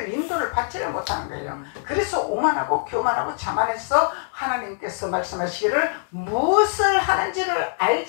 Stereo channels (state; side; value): silent; right; digital silence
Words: 인도를 받지를 못하는 거예요. 그래서 오만하고 교만하고 자만해서 하나님께서 말씀하시기를 무엇을 하는지를